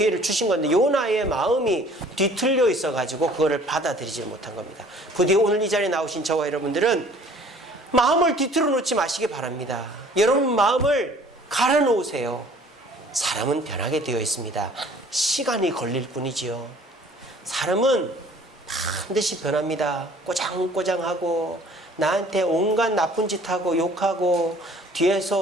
주신 건데 요나의 마음이 뒤틀려 있어가지고 그거를 받아들이지 못한 겁니다. 부디 오늘 이 자리에 나오신 저와 여러분들은 마음을 뒤틀어 놓지 마시기 바랍니다. 여러분 마음을 갈아 놓으세요. 사람은 변하게 되어 있습니다. 시간이 걸릴 뿐이지요. 사람은 반드시 변합니다. 꼬장꼬장하고 나한테 온갖 나쁜 짓 하고 욕하고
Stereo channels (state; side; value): normal; both; correlation 0.53